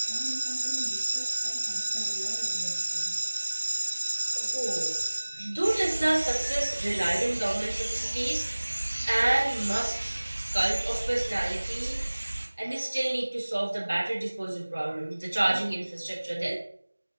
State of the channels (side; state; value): both; inverted; correlation -1.00